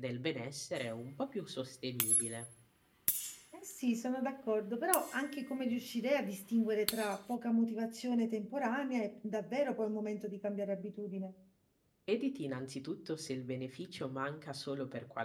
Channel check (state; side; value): identical; both; correlation 1.00